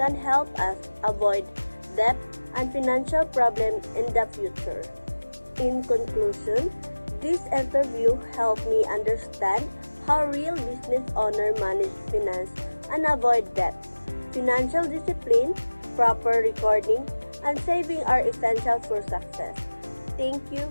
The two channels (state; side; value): inverted; both; correlation -1.00